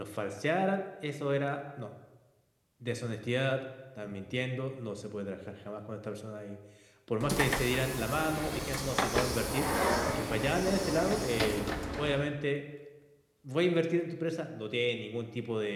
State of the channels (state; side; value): identical; both; correlation 1.00